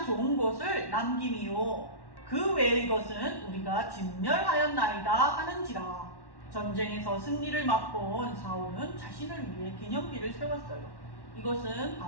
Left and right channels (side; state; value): right; late; 1.1 ms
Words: 좋은 것을 남김이요 그 외의 것은 우리가 진멸하였나이다 하는지라. 전쟁에서 승리를 맛본 사울은 자신을 위해 기념비를 세웠어요. 이것은